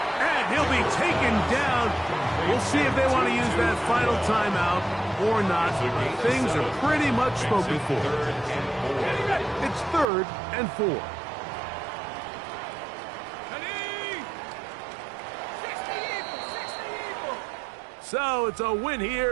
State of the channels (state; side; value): drops out; left; at 10.1 s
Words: And he'll be taken down. We'll see if they want to use that final timeout or not. Things are pretty much spoken for. It's 3rd and 4. 60 So it's a win